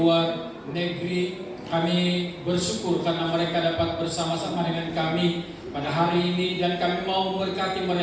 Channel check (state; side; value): identical; both; correlation 1.00